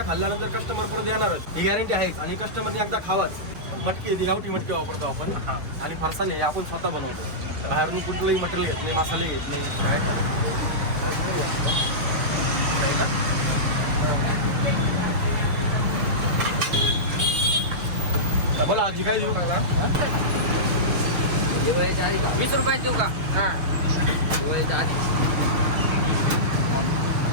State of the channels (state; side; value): late; left; 6.6 ms